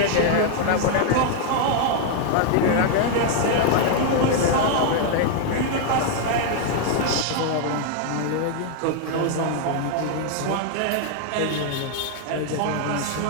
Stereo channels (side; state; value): both; different; correlation 0.00